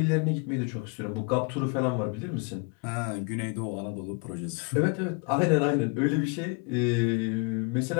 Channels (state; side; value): quieter; right; 32.7 dB